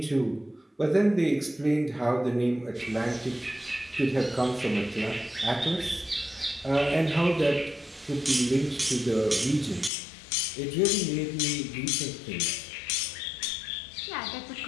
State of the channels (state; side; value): drops out; right; at 9.9 s